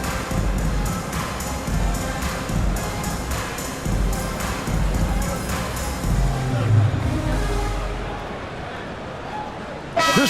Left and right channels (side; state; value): both; identical; correlation 1.00